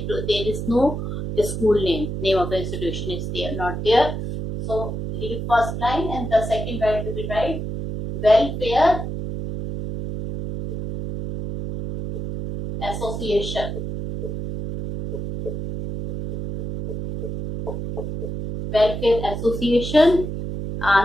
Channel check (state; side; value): noise; right; hum, 5 dB below the sound